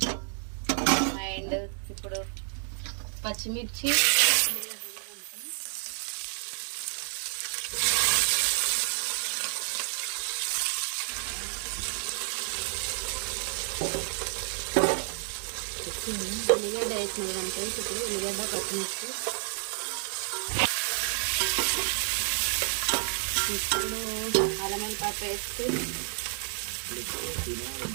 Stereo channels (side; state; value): left; silent; 57 dB below the other